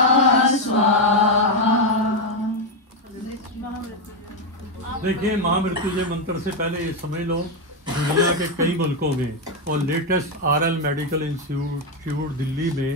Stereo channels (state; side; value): normal; both; correlation 0.06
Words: स्वाहा। देखिए, महामृत्युंजय मंत्र से पहले ये समझ लो, दुनिया के कई मुल्कों में और latest RL medical institute Delhi में